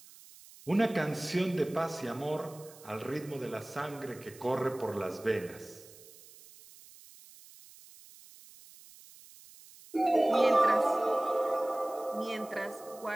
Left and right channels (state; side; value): noise; right; hiss, 21 dB below the sound